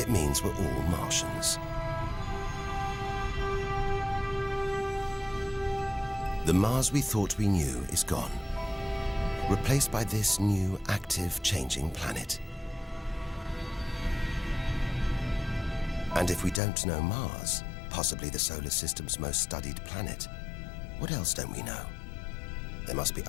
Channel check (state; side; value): drops out; right; at 16.6 s